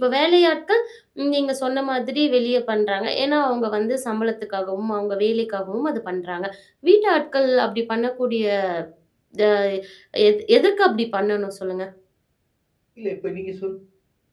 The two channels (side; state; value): both; identical; correlation 1.00